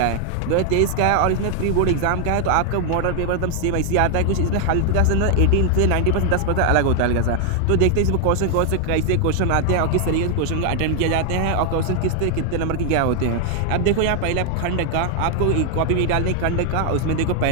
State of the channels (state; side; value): different; both; correlation 0.00